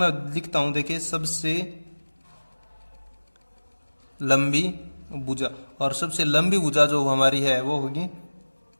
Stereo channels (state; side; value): inverted; both; correlation -1.00